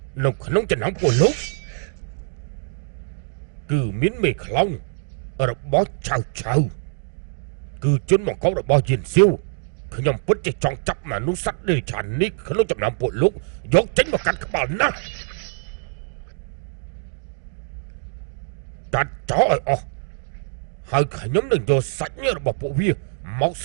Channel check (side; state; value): left; silent; digital silence